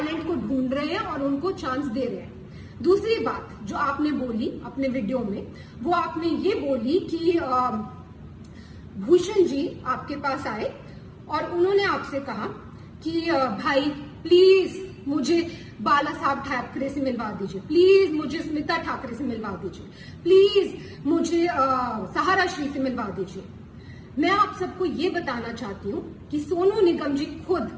को ढूंढ रहे हैं और उनको चांस दे रहे हैं। दूसरी बात जो आपने बोली अपने वीडियो में, वो आपने ये बोली कि भूषण जी आपके पास आए और उन्होंने आपसे कहा कि भाई प्लीज मुझे बाला साहब ठाकरे से मिलवा दीजिए, प्लीज मुझे स्मिता ठाकरे से मिलवा दीजिए, प्लीज मुझे सहारा श्री से मिलवा दीजिए। मैं आप सबको ये बताना चाहती हूँ कि सोनू निगम जी खुद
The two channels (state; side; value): identical; both; correlation 1.00